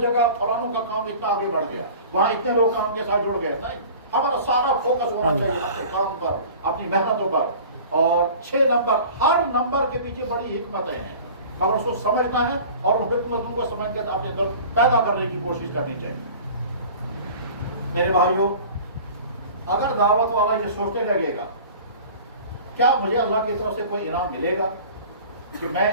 فلانوں کا کام اتنا آگے بڑھ گیا، وہاں اتنے لوگ کام کے ساتھ جڑ گئے، نہیں، ہمارا سارا فوکس ہونا چاہیے اپنے کام پر، اپنی محنتوں پر. اور 6 نمبر، ہر نمبر کے پیچھے بڑی حکمتیں ہیں، مگر اس کو سمجھنا ہے اور ان حکمتوں کو سمجھ کر اپنے اندر پیدا کرنے کی کوشش کرنی چاہیے. میرے بھائیوں، اگر دعوت والا یہ سوچنے لگے گا کیا مجھے اللہ کی طرف سے کوئی انعام ملے گا کہ میں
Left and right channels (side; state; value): both; inverted; correlation -0.42